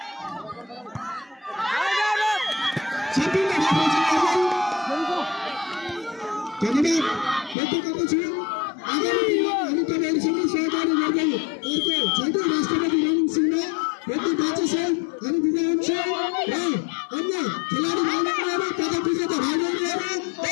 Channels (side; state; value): right; drops out; at 7.6 s